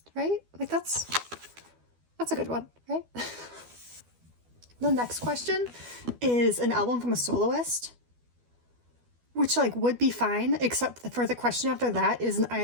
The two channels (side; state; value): left; late; 12 ms